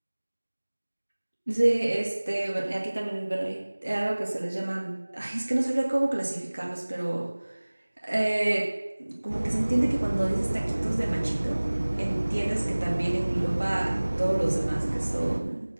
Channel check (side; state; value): both; inverted; correlation -1.00